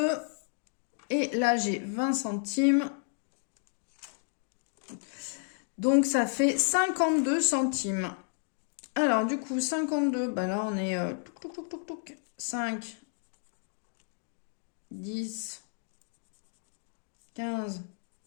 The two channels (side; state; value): right; silent; digital silence